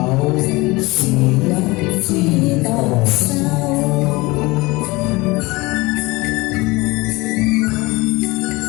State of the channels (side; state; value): right; quieter; 22.7 dB